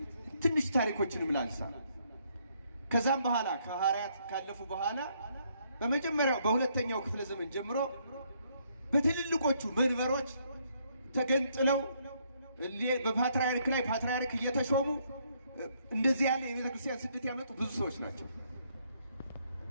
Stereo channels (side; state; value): both; inverted; correlation -0.71